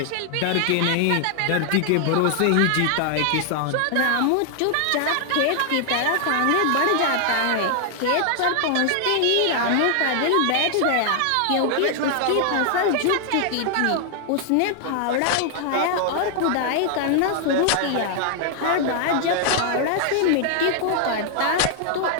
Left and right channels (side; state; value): both; different; correlation 0.00